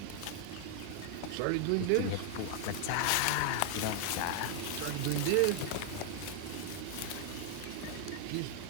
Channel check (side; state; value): both; different; correlation 0.00